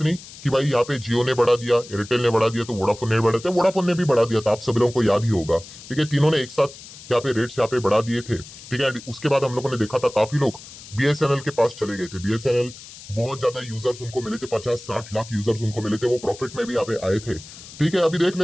नहीं कि भाई यहाँ पे जियो ने बढ़ा दिया, एयरटेल ने बढ़ा दिया तो वोडाफोन ने बढ़ा दिया, वोडाफोन ने भी बढ़ा दिया था, आप सभी लोगों को याद ही होगा, ठीक है। तीनों ने एक साथ यहाँ पे रेट्स यहाँ पे बढ़ा दिए थे, ठीक है। उसके बाद हम लोगों ने देखा था काफी लोग बीएसएनएल के पास चले गए थे। बीएसएनएल बहुत ज्यादा यूजर्स उनको मिले थे, 50-60 लाख यूजर्स उनको मिले थे, वो प्रॉफिट में भी यहाँ पे आए थे, ठीक है। अभी देख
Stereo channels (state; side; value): noise; left; hiss, 17 dB below the sound